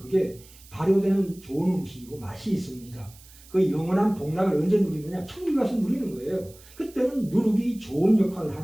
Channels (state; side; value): noise; right; hiss, 23 dB below the sound